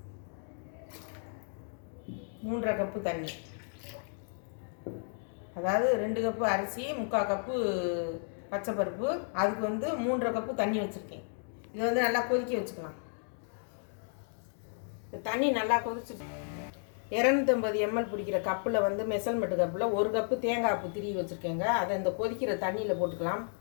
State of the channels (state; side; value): silent; right; 56 dB below the other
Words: 3/2 கப்பு தண்ணி. அதாவது 2 கப்பு அரிசி, 3/4 கப்பு பச்சை பருப்பு, அதுக்கு 3/2 கப்பு தண்ணி வச்சுருக்கேன். இதை நல்லா கொதிக்க வச்சுக்கலாம். தண்ணி நல்லா கொதிச்சுட்டு 250 ml பிடிக்கிற கப்பில் மெஷர்மெண்ட் கப்பில் 1 கப்பு தேங்காய் பூ திரி வச்சுருக்கேங்க. அதை இந்த கொதிக்கிற தண்ணியில் போட்டுக்கலாம்.